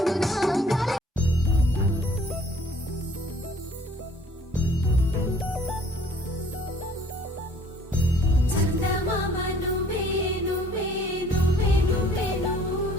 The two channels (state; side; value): normal; both; correlation 0.56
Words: గాలి చందమామ నువ్వే నువ్వే నువ్వే నువ్వే